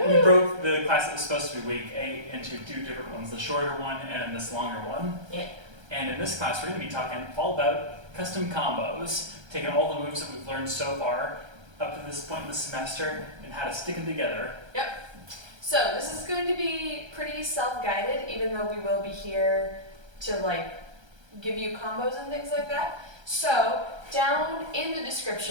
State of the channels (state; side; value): late; left; 1.3 ms